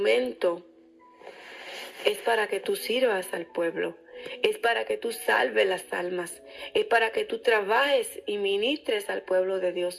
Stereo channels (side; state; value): both; identical; correlation 1.00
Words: es para que tú sirvas al pueblo, es para que tú salves las almas, es para que tú trabajes y ministres al pueblo de